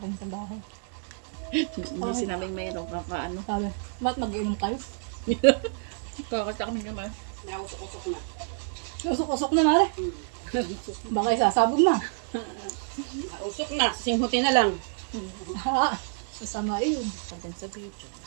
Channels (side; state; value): left; silent; digital silence